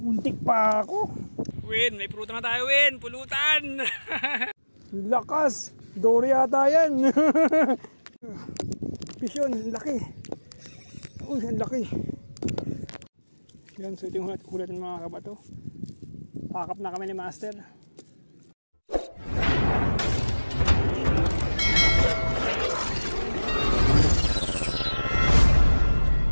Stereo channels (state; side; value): inverted; both; correlation -1.00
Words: pa ako. Win, may pulutan na tayo, Win. Pulutan. Lakas. Dory yata yan. Fish yun, laki. Uy, ang laki. Yan, so ito yung hulat ng mga kabato. Pakap na kami ni Master.